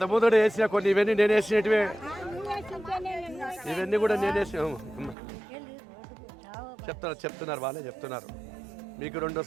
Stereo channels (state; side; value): drops out; left; at 5.2 s